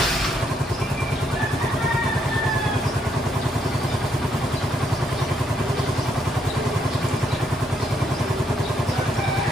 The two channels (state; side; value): normal; both; correlation 0.74